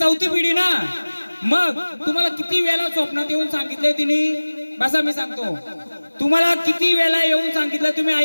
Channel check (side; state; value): both; inverted; correlation -1.00